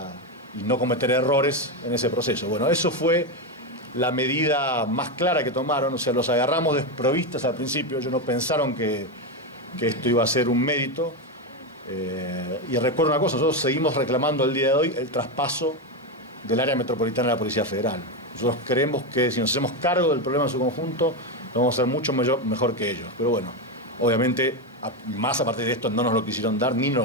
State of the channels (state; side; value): normal; both; correlation 0.11